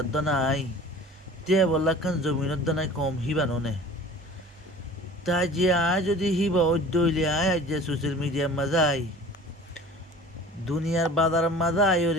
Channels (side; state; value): both; normal; correlation 0.43